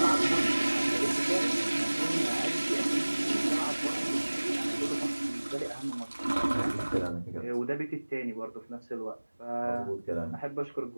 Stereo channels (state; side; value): inverted; both; correlation -1.00